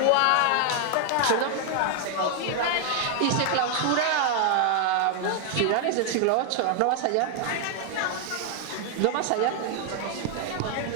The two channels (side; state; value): both; different; correlation 0.00